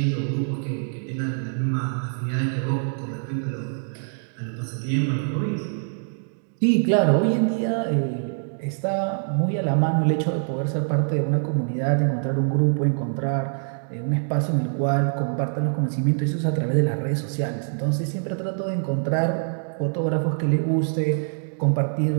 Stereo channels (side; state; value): left; silent; digital silence